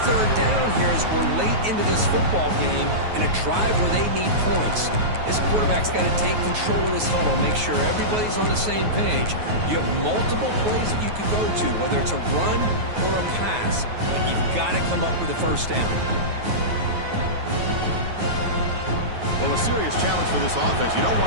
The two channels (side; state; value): left; late; 9.3 ms